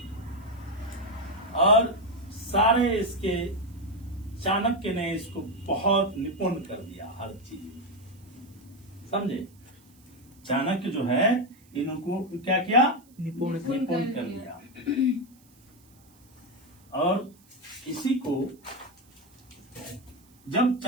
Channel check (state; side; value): noise; right; hiss, 30 dB below the sound